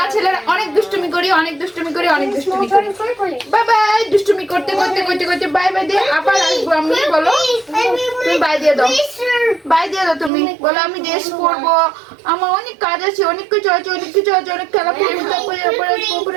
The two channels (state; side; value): drops out; left; at 10.3 s